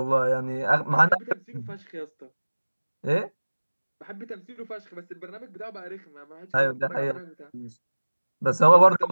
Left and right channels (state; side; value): inverted; both; correlation -1.00